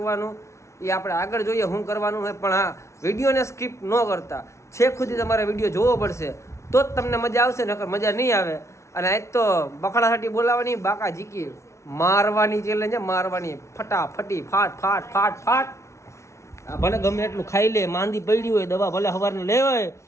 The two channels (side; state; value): right; late; 0.13 ms